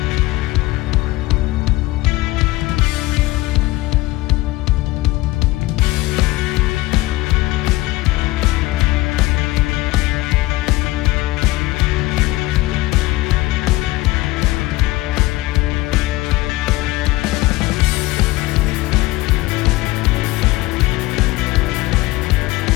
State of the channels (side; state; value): right; quieter; 18.8 dB